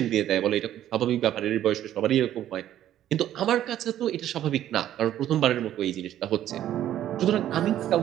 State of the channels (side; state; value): left; quieter; 12.0 dB